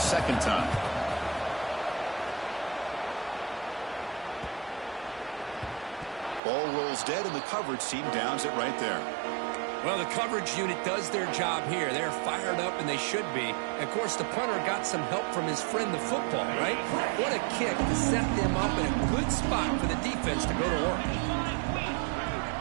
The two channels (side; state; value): left; drops out; at 6.4 s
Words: time. Ball rolls dead, and the coverage team downs it right there. Well, the coverage unit does their job here. They're fired up, and they should be. Of course, the punter got some help from his friend, the football, right? What a kick to set them up in a good spot for the defense to go to work.